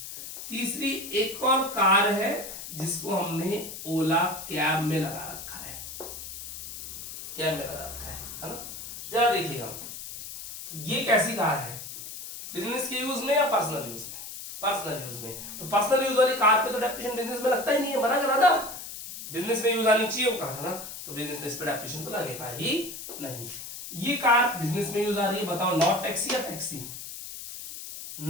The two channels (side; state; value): left; noise; hiss, 10 dB below the sound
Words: तीसरी एक और कार है जिसको हमने ओला कैब में लगा रखा है, कैब में लगा रखा है ना। जरा देखिएगा ये कैसी कार है, बिजनेस के यूज में या पर्सनल यूज में, पर्सनल यूज में। तो पर्सनल यूज वाली कार पे तो डेप्रिसिएशन बिजनेस में लगता ही नहीं है, मना करा था, बिजनेस में यूज आनी चाहिए वो कार, है ना, तो बिजनेस में इस पे डेप्रिसिएशन तो लगेगा ही नहीं। ये कार बिजनेस में यूज आ रही है, बताओ नॉट टैक्सी या टैक्सी,